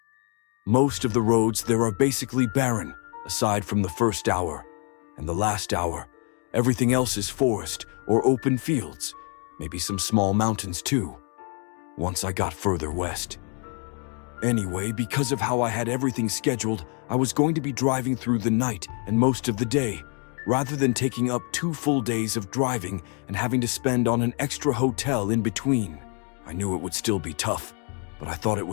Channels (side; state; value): right; quieter; 38.2 dB